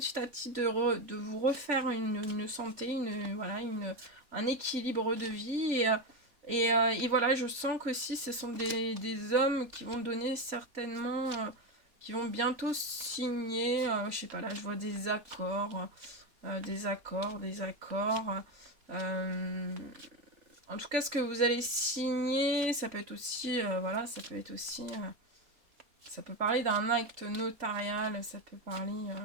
à petit de vous refaire une santé, voilà, un équilibre de vie. Et voilà, je sens qu'aussi ce sont des hommes qui vont donner certainement, qui vont bientôt signer, je sais pas, là je vois des accords, des accords. En tout cas, ce que vous allez signer, ça peut être aussi, voilà, ça peut être aussi... ça peut parler d'un acte notarial, ça peut parler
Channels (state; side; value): late; left; 3.5 ms